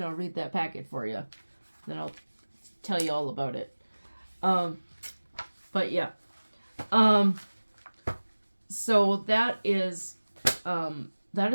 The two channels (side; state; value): both; inverted; correlation -1.00